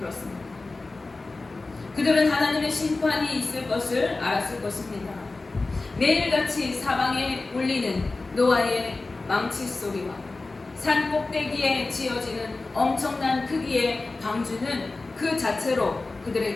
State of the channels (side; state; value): right; quieter; 3.4 dB